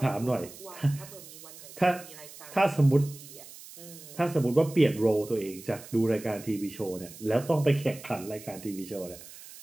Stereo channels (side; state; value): right; noise; hiss, 17 dB below the sound